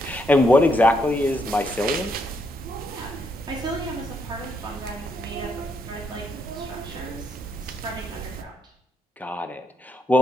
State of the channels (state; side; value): normal; both; correlation 0.76